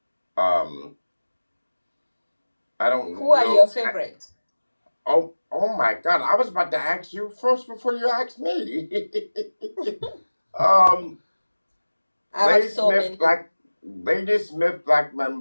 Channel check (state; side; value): inverted; both; correlation -1.00